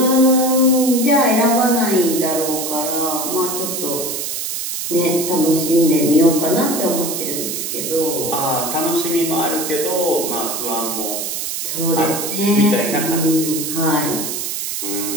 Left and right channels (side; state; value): right; noise; hiss, 4 dB below the sound